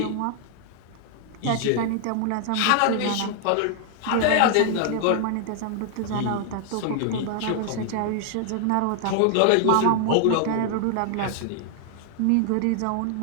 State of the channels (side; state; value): both; different; correlation 0.00